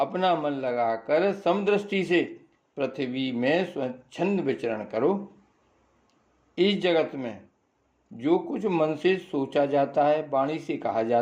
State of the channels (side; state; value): both; identical; correlation 1.00